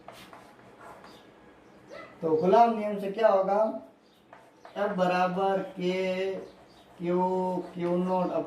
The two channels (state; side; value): identical; both; correlation 1.00